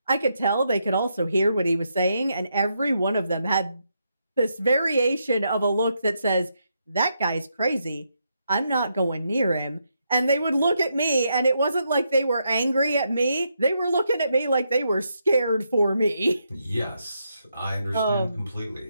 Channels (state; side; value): inverted; both; correlation -0.80